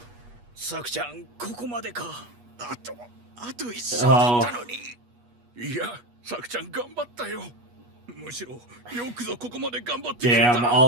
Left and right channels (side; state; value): left; late; 8.3 ms